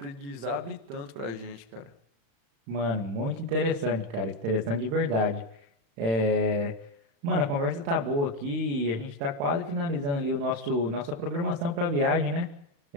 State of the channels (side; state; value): left; late; 35 ms